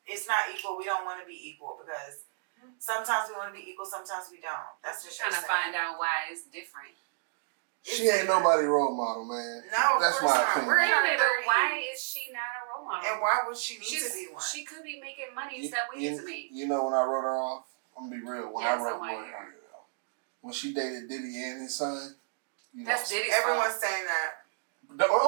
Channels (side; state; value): left; silent; digital silence